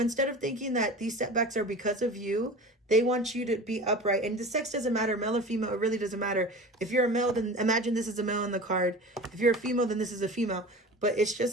of thinking that these setbacks are because of you, they want you to be upright. And the sex doesn't matter, male or female. It really doesn't matter. If you're a male, then imagine this is a male in the card. If you're a female, then this is a female. But it's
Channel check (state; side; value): normal; both; correlation 0.36